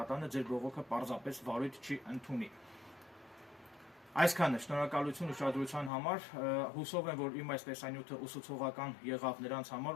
ձեր բողոքը պարզապես վարույթ չի ընդունի։ Այսքանը, շնորհակալություն ուշադրության համար, հուսով եմ, որ իմ այս տեսանյութը ուսուցողական եղավ նրանց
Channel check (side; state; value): right; drops out; at 5.9 s